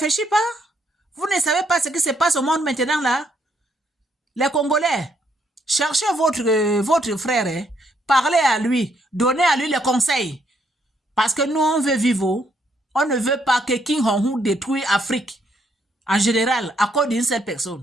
pas. Vous ne savez pas ce qui se passe au monde maintenant là. Les Congolais, cherchez votre frère, hein, parlez à lui, donnez à lui les conseils. Parce que nous, on veut vivre. On ne veut pas que Kim Jong-un détruise l'Afrique. En général, à cause d'une seule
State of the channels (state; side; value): normal; both; correlation 0.72